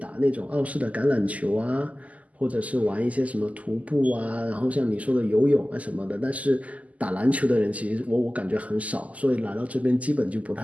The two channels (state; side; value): late; left; 0.072 ms